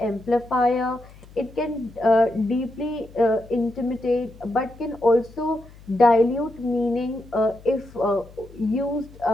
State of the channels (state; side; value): noise; left; hum, 22 dB below the sound